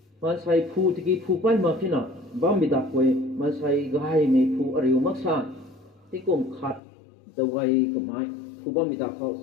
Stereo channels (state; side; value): drops out; right; at 6.8 s